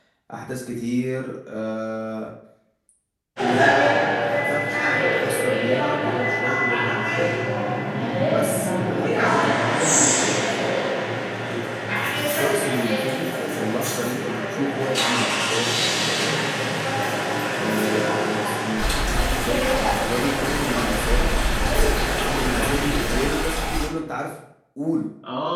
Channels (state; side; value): identical; both; correlation 1.00